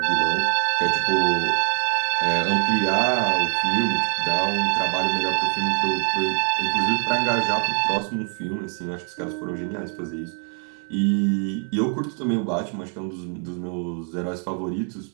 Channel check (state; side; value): quieter; left; 39.9 dB